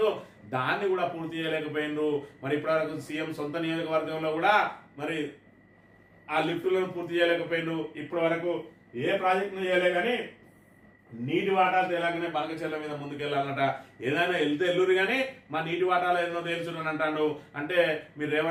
దాన్ని కూడా పూర్తి చేయలేకపోయిండ్రు. మరి ఇప్పటివరకు సీఎం సొంత నియోజకవర్గంలో కూడా మరి ఆ లిఫ్టులను పూర్తి చేయలేకపోయిండ్రు. ఇప్పటి వరకు ఏ ప్రాజెక్టును చేయలే కానీ నీటి వాటాలు తేలాగానే బనకచెర్ల మీద ముందుకెళ్ళాలన్నట. ఏదైనా వెళ్తే ఎల్లురు కానీ మా నీటి వాటాలు ఏదో తేల్చునని అంటాడు. అంటే మీరు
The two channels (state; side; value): identical; both; correlation 1.00